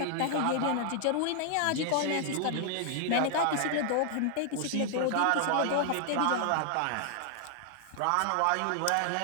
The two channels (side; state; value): both; different; correlation 0.00